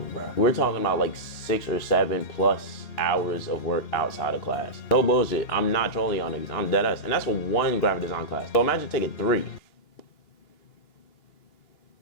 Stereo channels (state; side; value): late; right; 3.0 ms